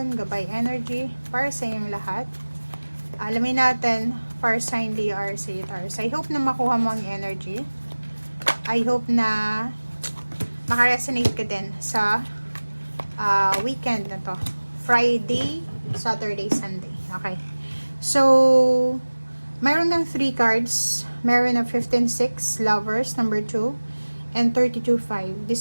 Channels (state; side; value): inverted; both; correlation -1.00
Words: gabay energy para sa inyong lahat. Alamin natin Far Sign, Leo, Aries, Sagittarius. I hope na makuha mo ang energy. I hope na makaresonate ka din sa weekend na to. Friday, Saturday, Sunday. Okay. So, mayroon kang 3 cards. Meron ng 15-6, Lovers, number 2, and 32-5,